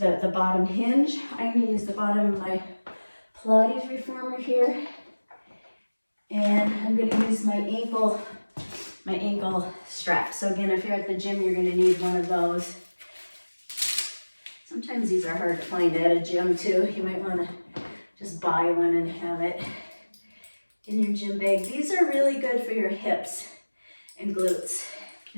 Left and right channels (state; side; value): inverted; both; correlation -1.00